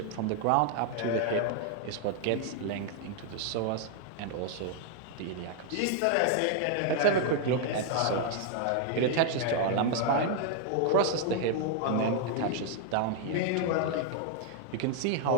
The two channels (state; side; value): different; both; correlation 0.00